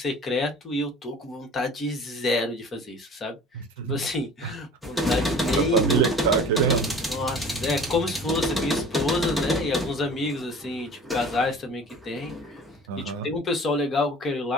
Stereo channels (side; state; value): both; normal; correlation 0.44